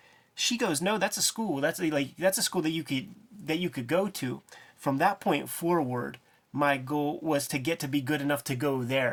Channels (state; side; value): identical; both; correlation 1.00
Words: She goes, no, that's a school. That's a school that you could go to. From that point forward, my goal was to get to be good enough to go